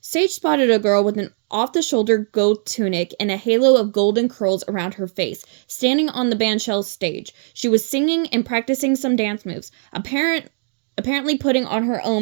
spotted a girl with an off-the-shoulder gold tunic and a halo of golden curls around her face, standing on the bandshell stage. She was singing and practicing some dance moves, apparently putting on her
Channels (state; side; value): silent; left; 66 dB below the other